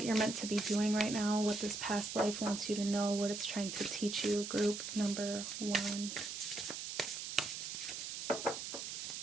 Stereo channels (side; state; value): right; noise; hiss, 6 dB below the sound